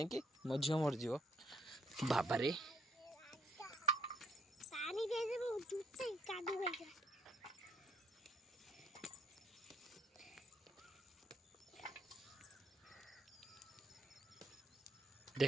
मो झील मरज बाबा रे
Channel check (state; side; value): normal; both; correlation 0.69